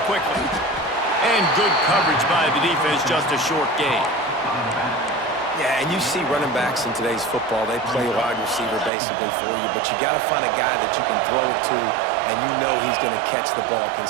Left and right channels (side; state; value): left; drops out; at 8.9 s